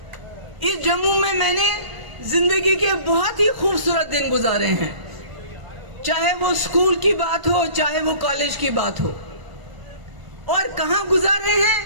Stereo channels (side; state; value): left; late; 1.4 ms